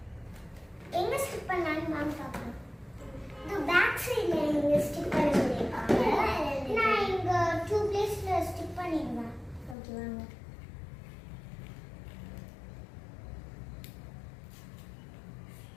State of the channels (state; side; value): drops out; right; at 9.8 s